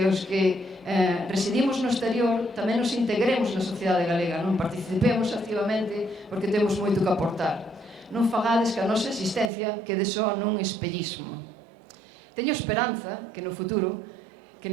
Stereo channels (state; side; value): drops out; left; at 9.5 s